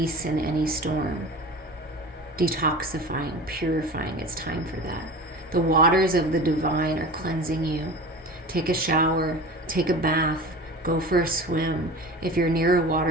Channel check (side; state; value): both; normal; correlation 0.35